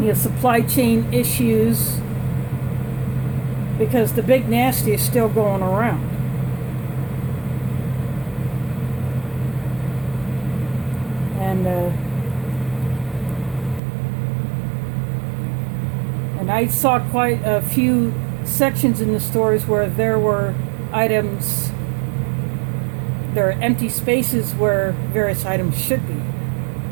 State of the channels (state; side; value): drops out; left; at 13.8 s